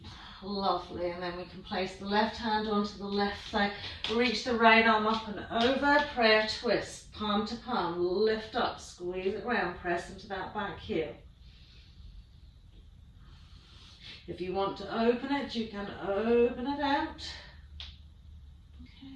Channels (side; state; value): both; identical; correlation 1.00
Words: Lovely. And then we can place the left hand onto the left side. Reach the right arm up and over. Prayer twist. Palm to palm. Lift up. Squeeze it round. Press into that back heel. If you want to open it, you can open it out.